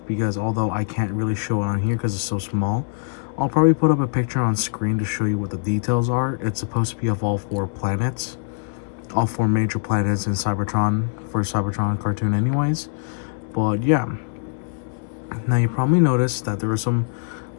because although I can't really show it on here because it's so small, I'll probably put up a picture on screen to show you what the details are. It's supposed to be of all 4 planets. All 4 major planets in Cybertron, for Cybertron cartoon anyways. But yeah. Now you probably noticed that there are some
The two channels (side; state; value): right; silent; digital silence